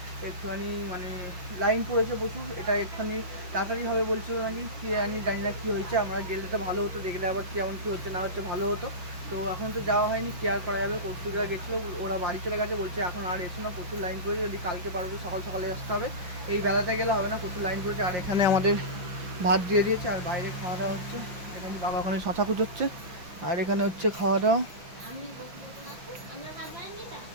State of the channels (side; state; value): left; late; 5.8 ms